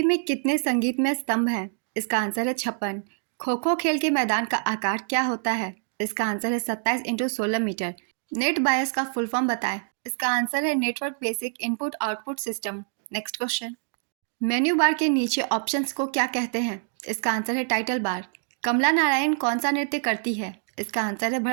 में कितने संगीतमय स्तंभ हैं? इसका आंसर है 56। खो खो खेल के मैदान का आकार क्या होता है? इसका आंसर है 27 × 16 मीटर। नेट बायस का फुल फॉर्म बताएं। इसका आंसर है network basic input output system. Next question. Menu bar के नीचे ऑप्शंस को क्या कहते हैं? इसका आंसर है टाइटल बार। कमला नारायण कौन सा नृत्य करती है? इसका आंसर है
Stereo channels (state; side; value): silent; left; 59 dB below the other